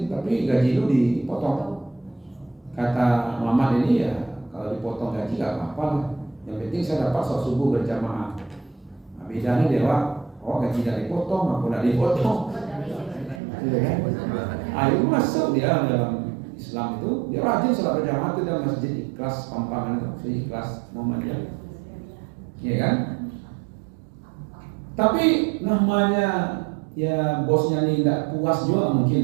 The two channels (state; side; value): drops out; left; at 13.4 s